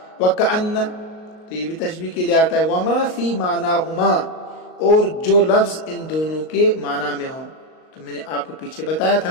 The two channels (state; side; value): late; right; 38 ms